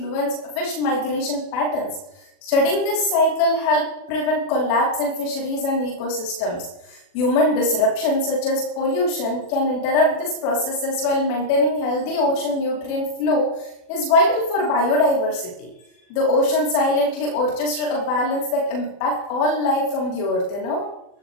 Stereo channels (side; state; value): right; late; 40 ms